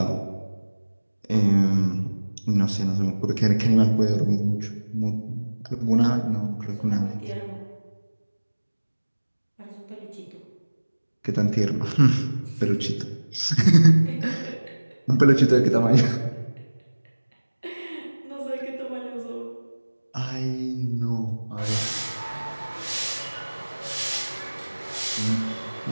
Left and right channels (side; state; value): both; inverted; correlation -1.00